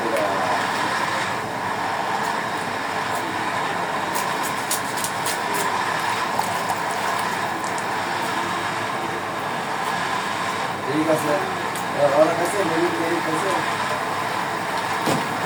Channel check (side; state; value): right; noise; hum, 29 dB below the sound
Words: ওরা ঠিক আছে। ওরা কাছে মেরিট কাছে